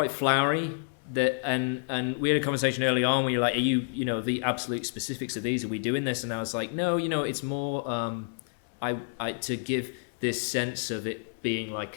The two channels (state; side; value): silent; right; digital silence